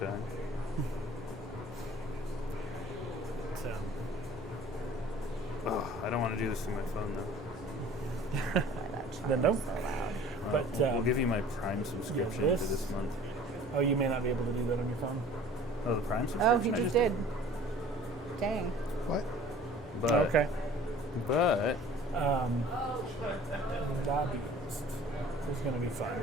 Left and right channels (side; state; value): both; normal; correlation 0.48